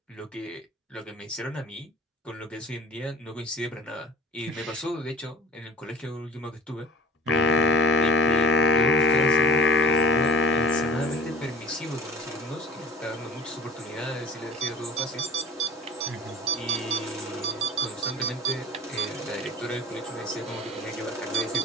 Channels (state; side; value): normal; both; correlation 0.42